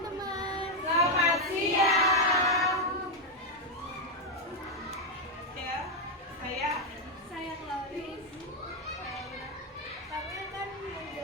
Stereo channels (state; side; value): normal; both; correlation 0.03